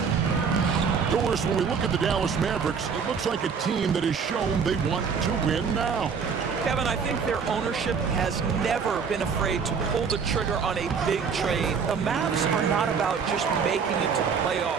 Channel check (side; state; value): left; quieter; 6.1 dB